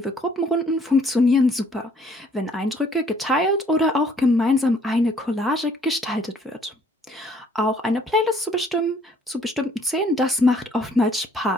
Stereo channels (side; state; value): both; normal; correlation 0.61